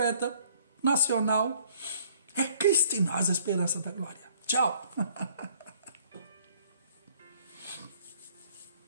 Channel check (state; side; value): inverted; both; correlation -0.59